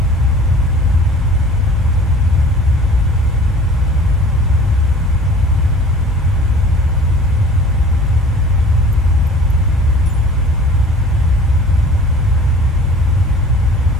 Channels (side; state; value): both; normal; correlation 0.46